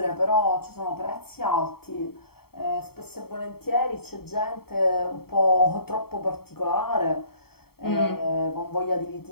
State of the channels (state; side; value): late; right; 0.95 ms